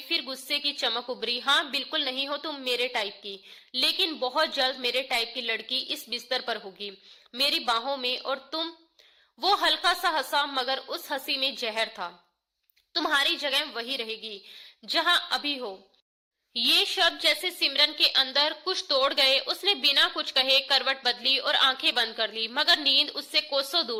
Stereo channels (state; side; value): identical; both; correlation 1.00